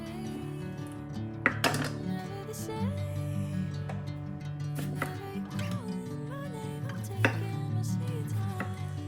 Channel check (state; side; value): identical; both; correlation 1.00